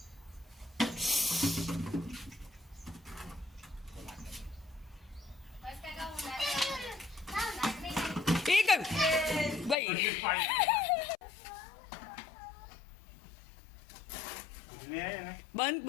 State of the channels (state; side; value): drops out; right; at 9.8 s